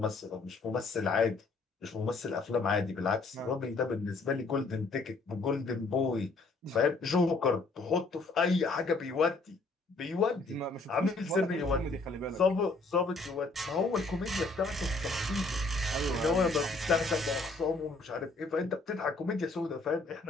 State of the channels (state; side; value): quieter; right; 3.5 dB